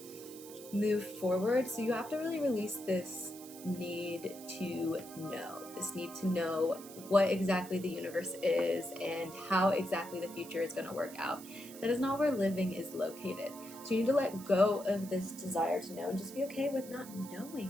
move forward. So you have to really release this need to know what exactly the universe is and how exactly the future is going to work out. That is not where living is located. So you need to let go of this desire to know and just be okay with not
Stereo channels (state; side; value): noise; right; hiss, 16 dB below the sound